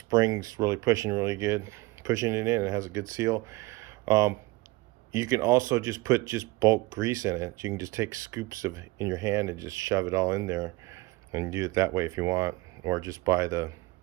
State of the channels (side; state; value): left; quieter; 21.7 dB